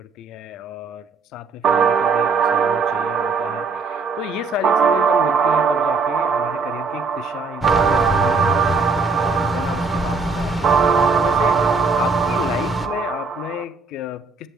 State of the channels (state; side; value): quieter; left; 4.4 dB